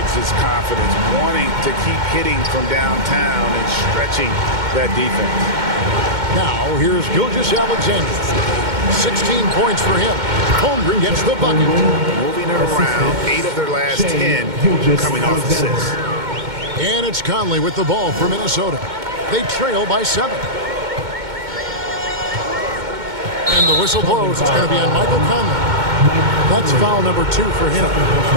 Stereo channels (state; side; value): late; left; 2.1 ms